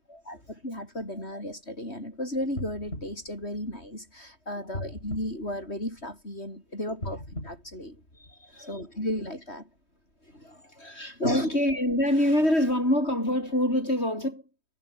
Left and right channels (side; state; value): right; late; 3.1 ms